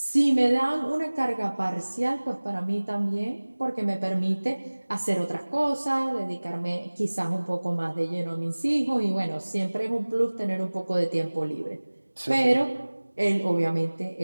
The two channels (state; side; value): inverted; both; correlation -1.00